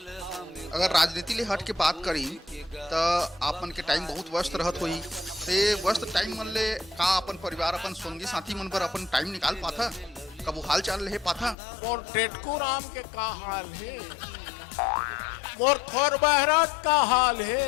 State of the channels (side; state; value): right; drops out; at 11.6 s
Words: अगर राजनीति ले हट के बात करी तो आप मन के टाइम बहुत व्यस्त रहत होही, ते व्यस्त टाइम मन ले का अपन परिवार अपन संगी साथी मन पर अपन टाइम निकाल पाथा, कबू हाल चाल ले पाथा? मोर टेटकू राम के का हाल है, मोर खोर बहरत का हाल